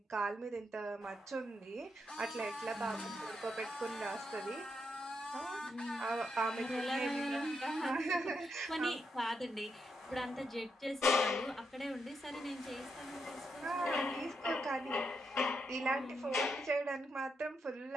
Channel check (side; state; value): both; normal; correlation 0.81